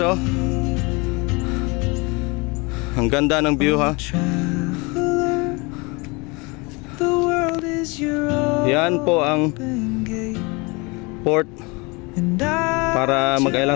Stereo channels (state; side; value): quieter; right; 27.5 dB